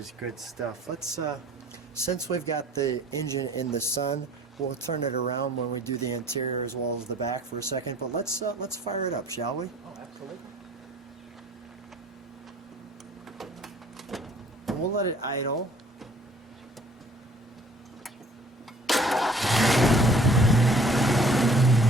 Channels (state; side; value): normal; both; correlation 0.53